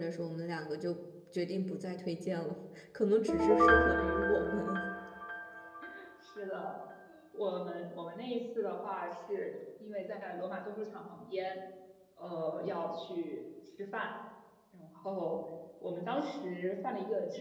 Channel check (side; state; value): both; identical; correlation 1.00